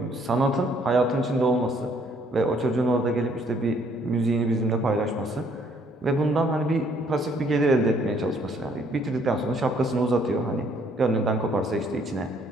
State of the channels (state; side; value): normal; both; correlation 0.65